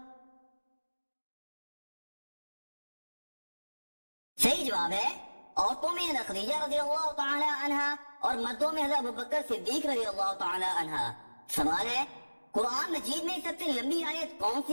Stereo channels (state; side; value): inverted; both; correlation -1.00